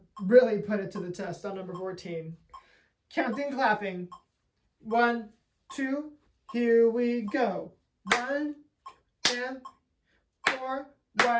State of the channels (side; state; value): both; identical; correlation 1.00